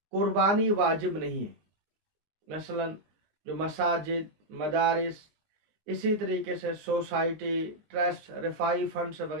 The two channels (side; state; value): left; late; 19 ms